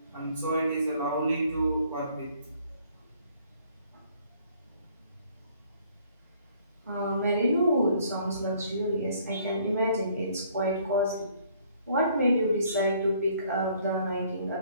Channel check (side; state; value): both; inverted; correlation -0.61